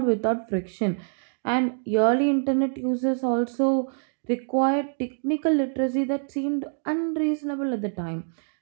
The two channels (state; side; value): silent; left; 61 dB below the other